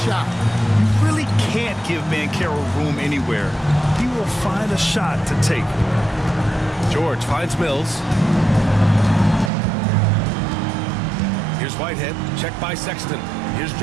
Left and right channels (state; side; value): drops out; left; at 9.5 s